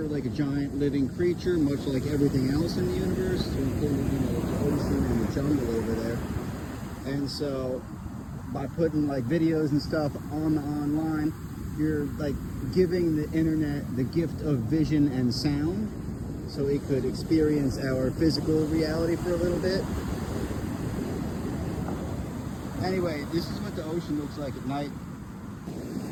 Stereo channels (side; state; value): both; identical; correlation 1.00